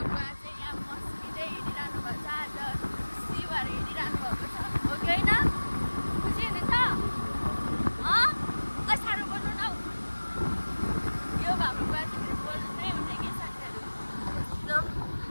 बुवा चाहिँ यहाँ मस्किँदै हिँडिरहनु भएको छ। आज खुसी भएर हिँडिरहनु भएको छ हो कि होइन? खुसी हुनुहुन्छ? साह्रो बोल्नु न। यो हाम्रो बुवा चाहिँ बोल्नै हुने कि साथीहरु।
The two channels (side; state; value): both; inverted; correlation -1.00